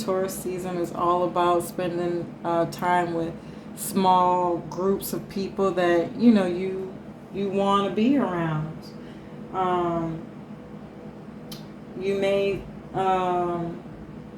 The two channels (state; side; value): identical; both; correlation 1.00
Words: season is all about spending time with small groups of people that you want to be around. You may